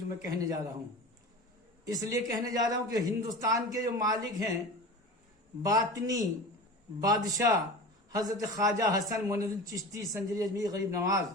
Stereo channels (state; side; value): normal; both; correlation 0.33